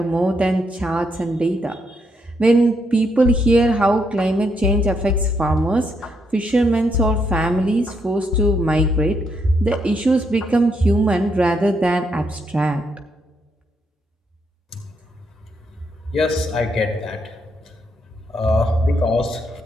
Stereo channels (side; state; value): both; normal; correlation 0.77